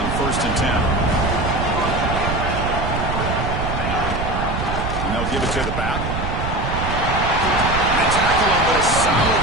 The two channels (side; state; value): right; noise; rumble, 3 dB below the sound